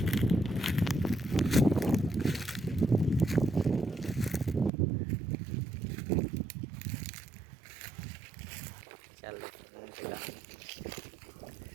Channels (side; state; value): left; drops out; at 4.7 s